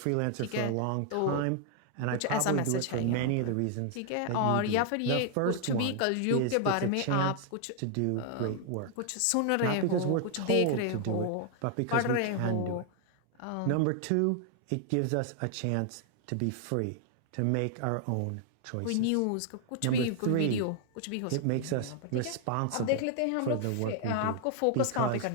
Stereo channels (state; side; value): different; both; correlation 0.00